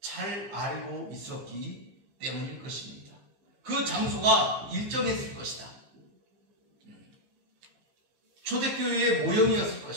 알고 있었기 때문일 것입니다. 그 장소가 일정했을 것이다. 초대교회의 모형이었을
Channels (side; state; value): left; late; 15 ms